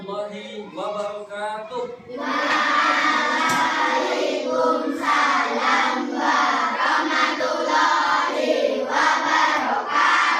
wabarakatuh. Waalaikumsalam warahmatullahi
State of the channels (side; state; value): both; identical; correlation 1.00